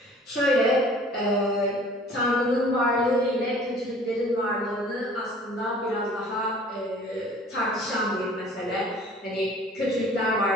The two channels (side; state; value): both; normal; correlation 0.50